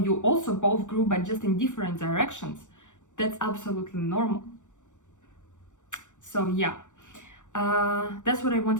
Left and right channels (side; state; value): right; late; 0.85 ms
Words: also both grew but just in different directions, that's absolutely normal. So yeah, that's what I